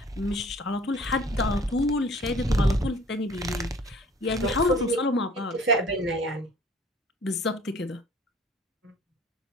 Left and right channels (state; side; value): normal; both; correlation 0.52